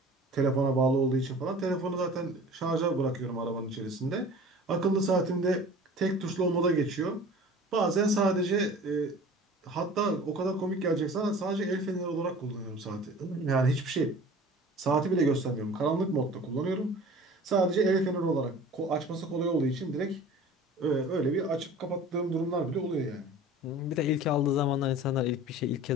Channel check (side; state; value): both; normal; correlation 0.42